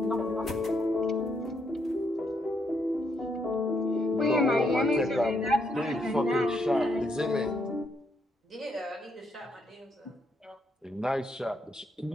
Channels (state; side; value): normal; both; correlation 0.76